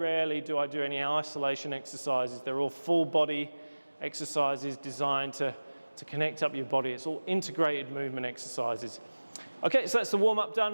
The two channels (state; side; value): inverted; both; correlation -1.00